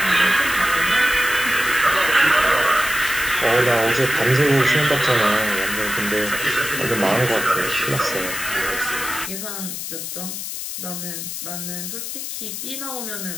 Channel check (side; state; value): left; noise; hiss, 6 dB below the sound